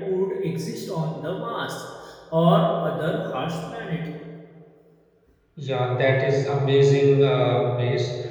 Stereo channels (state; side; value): identical; both; correlation 1.00